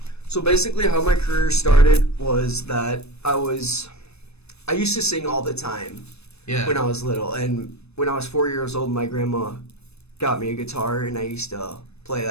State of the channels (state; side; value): late; right; 0.79 ms